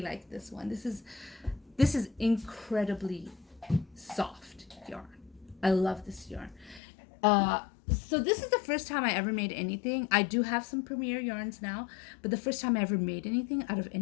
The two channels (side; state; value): right; drops out; at 6.8 s